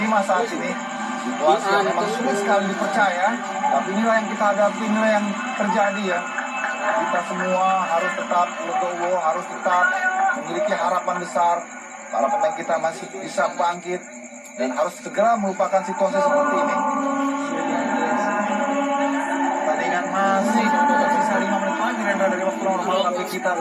5 saat ini. Situasi yang memang sulit sekali dipercaya, tapi inilah yang kita hadapi, inilah yang terjadi ya. Kita semua harus tetap legowo, harus tetap memiliki harapan besar. Para pemain kita masih bisa bangkit dan harus segera melupakan situasi seperti ini. Pertandingan masih tersisa 5 menit lagi Rendra dari waktu normal, tapi kita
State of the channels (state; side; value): identical; both; correlation 1.00